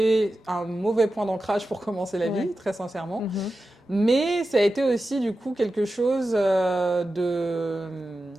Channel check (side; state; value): both; normal; correlation 0.92